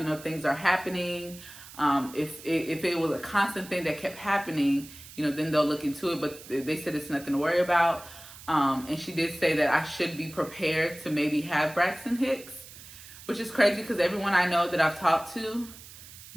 know, things are happening. If it was a constant thing that kept happening, you know, then they'll look into it. But they said it's nothing to worry about. And she did say that I should be prepared to maybe have Braxton Hicks, which is crazy, because everyone I know that I've talked to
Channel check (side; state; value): right; noise; hiss, 17 dB below the sound